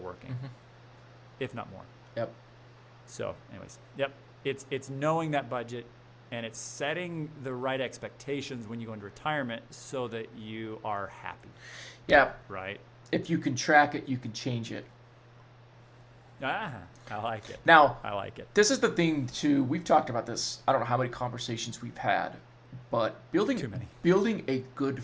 if not more. Yep. So anyways, yep. It's knowing that budget, and it's setting the right expectations when you go into retirement so that you are happy. Yeah. Right? If you can track it, you can change it. I like it. Now, I like it. This is the thing too. We've talked about this. I don't know how many conversations we've had, but Too many. building a good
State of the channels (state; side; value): identical; both; correlation 1.00